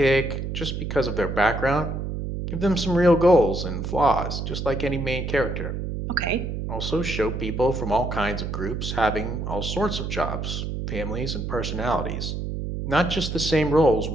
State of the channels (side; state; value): right; noise; hum, 4 dB below the sound